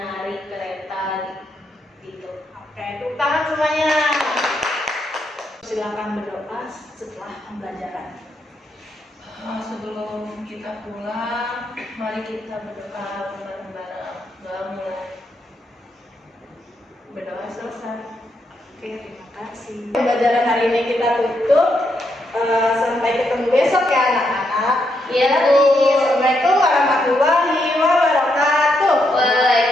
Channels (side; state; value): both; normal; correlation 0.79